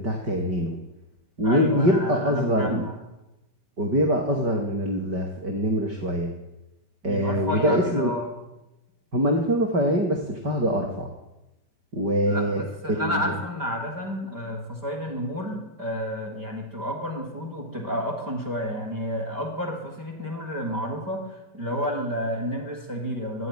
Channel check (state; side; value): late; left; 5.1 ms